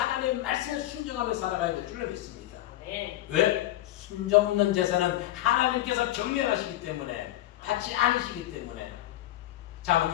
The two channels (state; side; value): quieter; right; 14.7 dB